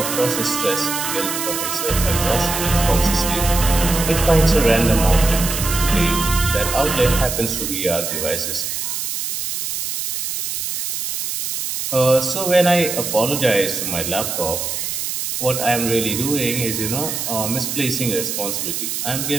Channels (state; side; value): noise; right; hiss, 3 dB below the sound